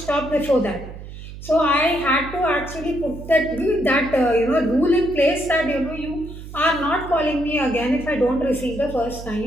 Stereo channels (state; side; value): noise; right; hum, 13 dB below the sound